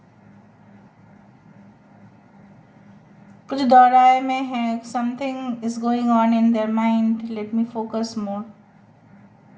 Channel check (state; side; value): identical; both; correlation 1.00